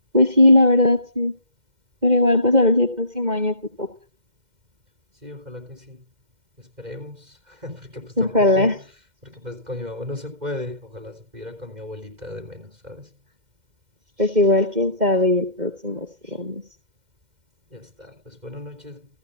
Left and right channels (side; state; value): left; late; 2.1 ms